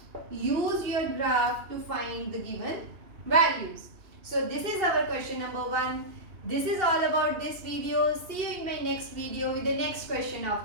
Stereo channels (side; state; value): left; late; 2.7 ms